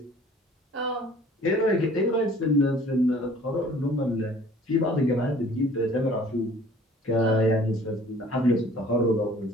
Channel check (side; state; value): both; normal; correlation 0.52